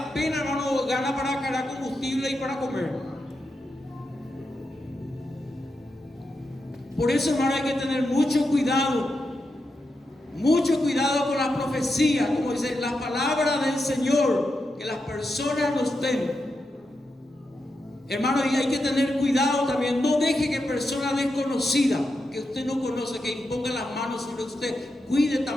hermano, gana para cargar combustible y para comer? Por eso, hermano, hay que tener mucho cuidado con la profecía, como dice la palabra del Señor, que las personas nos den. Hermano, y hay que tener cuidado también. No deje que personas desconocidas, que usted no conoce, que impongan las manos sobre usted. Cuide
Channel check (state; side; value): normal; both; correlation 0.87